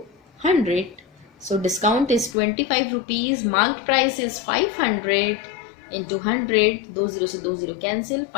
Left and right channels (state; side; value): drops out; right; at 2.4 s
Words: 100. So discount is 25 rupees, marked price is 500 into 100, 2 0 से 2 0 cancel,